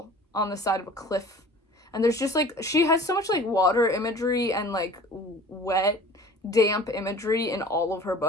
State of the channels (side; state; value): both; normal; correlation 0.45